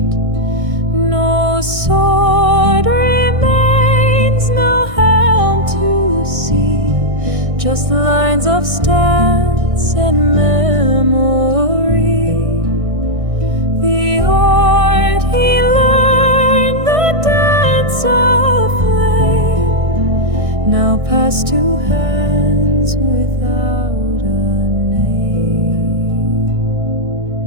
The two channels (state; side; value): late; left; 1.6 ms